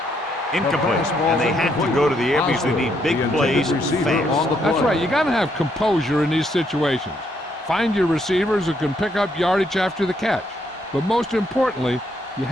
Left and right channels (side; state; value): both; normal; correlation 0.74